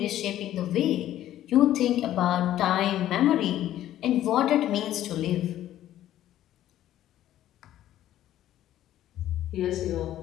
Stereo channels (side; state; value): right; quieter; 12.7 dB